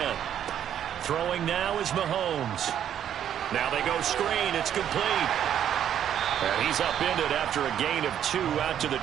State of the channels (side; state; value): left; quieter; 9.9 dB